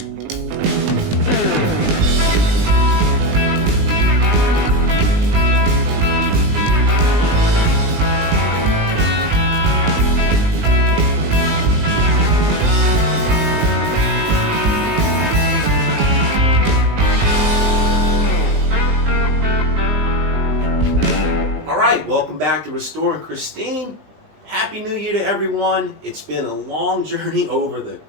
Welcome back to Restoring Christine. Happy New Year to everyone. It's been a long journey over the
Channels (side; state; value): left; late; 19 ms